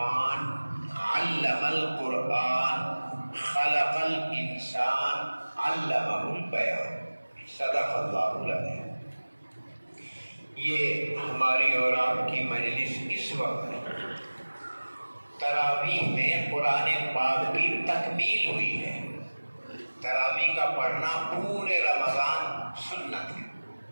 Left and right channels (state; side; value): inverted; both; correlation -1.00